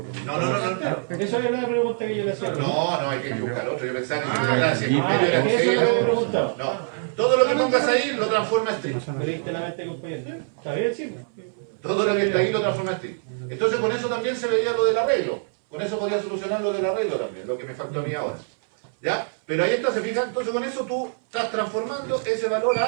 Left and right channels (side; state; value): left; silent; 62 dB below the other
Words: No. Eso era la pregunta que yo le hacía. No, hay que buscar otro. Yo pensaba que eso era la pregunta. No. Todo lo que pongas ahí lo transforma en string. Me leíste la mente, compañero. ¿Está bien, sí? Todo lo que está ahí lo transforma en string. Entonces con eso también se veía lo del arreglo. Con eso podía solucionar lo del arreglo también, lo que me faltó a mí ahora. ¿Ya? Pero ahí está, se fijan. Entonces con eso tú estás transformando ese valor